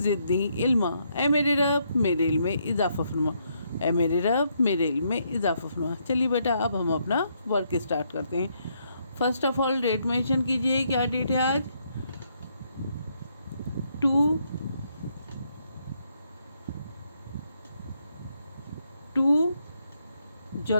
इल्मा। ए मेरे रब, मेरे इल्म में इजाफ़ा फरमा। ए मेरे रब, मेरे इल्म में इजाफ़ा फरमा। चलिए बेटा, अब हम अपना वर्क स्टार्ट करते हैं। First of all date mention कीजिए। क्या डेट है आज? 2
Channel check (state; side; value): inverted; both; correlation -0.74